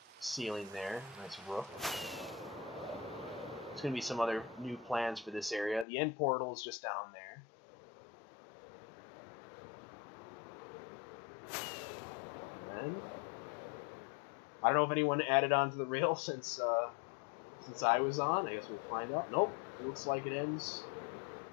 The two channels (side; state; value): right; drops out; at 5.9 s